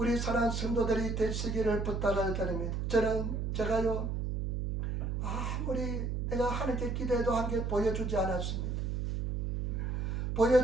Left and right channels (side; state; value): right; noise; hum, 1 dB below the sound